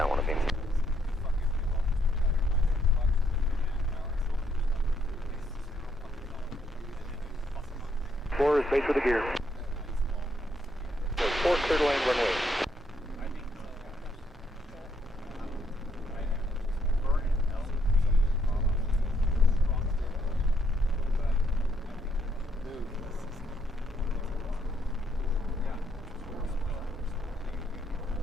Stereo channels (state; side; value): normal; both; correlation 0.73